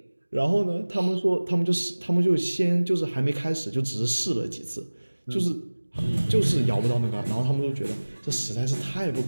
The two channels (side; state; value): both; inverted; correlation -1.00